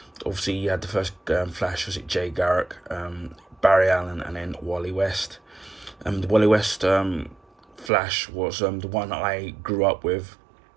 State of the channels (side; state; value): left; drops out; at 7.9 s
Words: obviously you had the first Flash, was it Jay Garrick, Barry Allen, and then Wally West. The Wally West Flash was the one I grew up with.